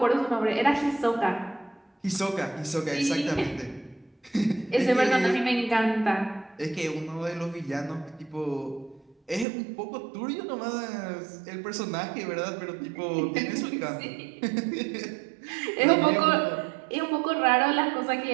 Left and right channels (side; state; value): left; drops out; at 9.5 s